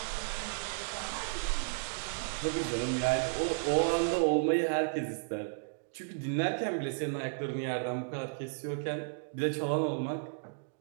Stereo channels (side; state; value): left; silent; digital silence